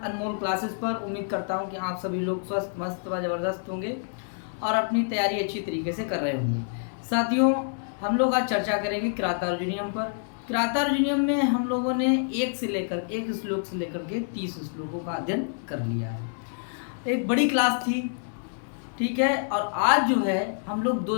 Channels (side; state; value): right; silent; digital silence